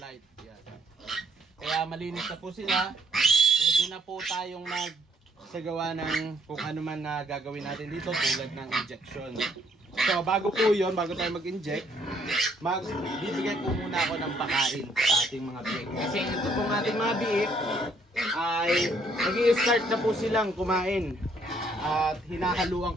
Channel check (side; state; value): both; normal; correlation 0.67